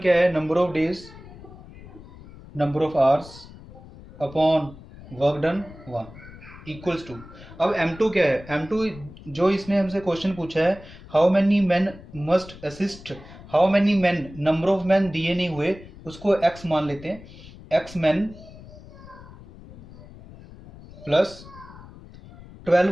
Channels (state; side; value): noise; left; rumble, 18 dB below the sound